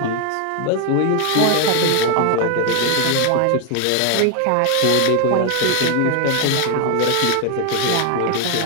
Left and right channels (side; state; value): both; different; correlation 0.01